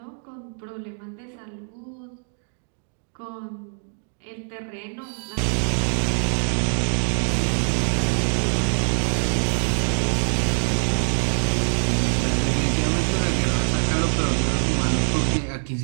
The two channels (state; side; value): silent; left; 63 dB below the other